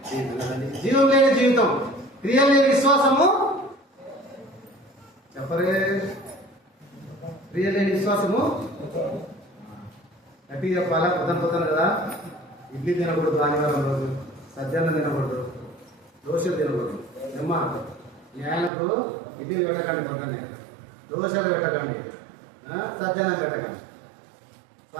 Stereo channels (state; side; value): drops out; left; at 18.7 s